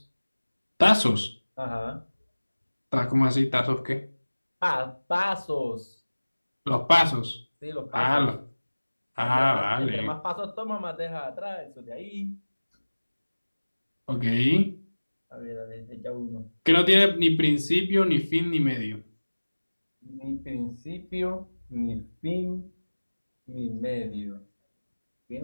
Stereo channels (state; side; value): inverted; both; correlation -1.00